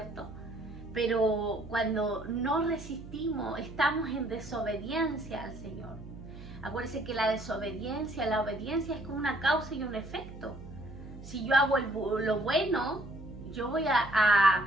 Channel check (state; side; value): noise; right; hum, 14 dB below the sound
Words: Pero cuando no resistimos, estamos en desobediencia al Señor. Acuérdense que la obediencia es como una causa y un efecto. Si yo hago lo bueno,